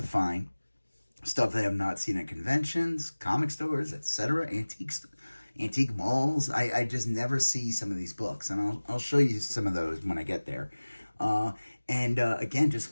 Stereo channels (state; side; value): inverted; both; correlation -1.00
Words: find. Stuff that I have not seen at conventions, comic stores, etc., antique malls. I just never see some of these books, and I'll show you some of those when I get there. And again, just